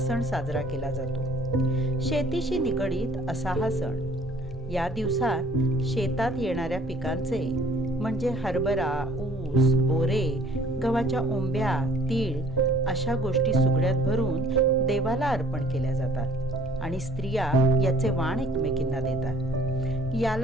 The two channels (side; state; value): both; normal; correlation 0.55